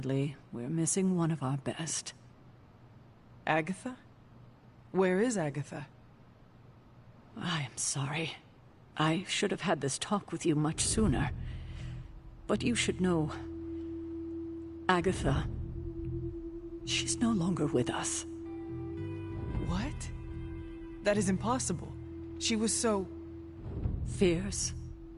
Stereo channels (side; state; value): both; identical; correlation 1.00